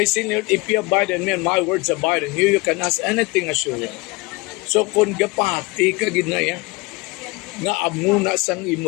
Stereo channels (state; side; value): quieter; right; 24.3 dB